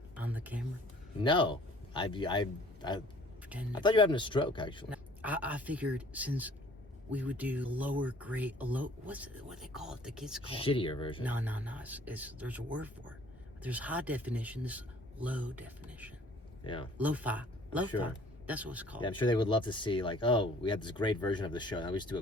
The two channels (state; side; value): normal; both; correlation 0.54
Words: on the camera? No, I Pretend. thought you were having a stroke, actually. I figured since we would do lower grade, what they call it? The kids call it Shittier version. No. It's there's a word for it. There's high definition. This low definition. Yeah. Lo-fi. Sure. That's what it's called. Yeah, I'm sure they would love to see, like, oh, we had this great version of the show. Now we just do a